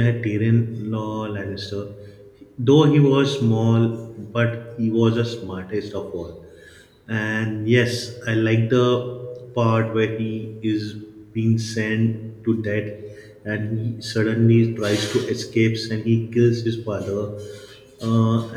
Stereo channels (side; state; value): both; identical; correlation 1.00